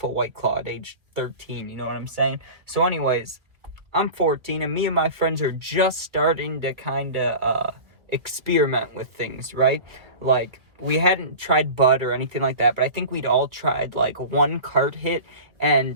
a White Claw at age 13, you know what I'm saying? So anyways, I'm 14 and me and my friends are just starting to kind of experiment with things, right? Like, we hadn't tried bud or anything like that, but I think we'd all tried like one cart hit,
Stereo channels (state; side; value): late; left; 1.9 ms